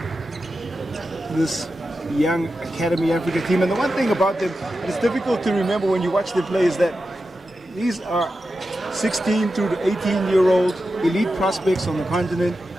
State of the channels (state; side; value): normal; both; correlation 0.91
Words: This young Academy Africa team, and the one thing about them, it's difficult to remember when you watch them play, is that these are 16 through to 18-year-old elite prospects on the continent